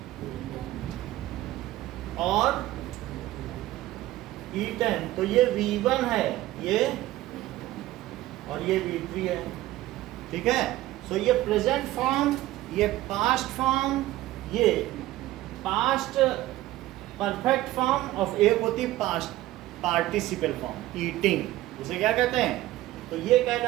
और eaten, तो ये V1 है ये, और ये V3 है। ठीक है? सो ये प्रेजेंट फॉर्म, ये पास्ट फॉर्म, ये पास्ट परफेक्ट फॉर्म ऑफ एक होती है पास्ट पार्टिसिपल फॉर्म, ईटिंग, इसे क्या कहते हैं? तो ये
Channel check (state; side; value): quieter; left; 16.0 dB